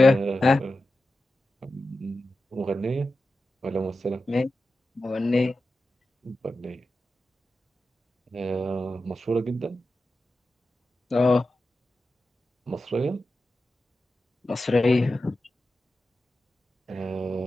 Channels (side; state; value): both; normal; correlation 0.92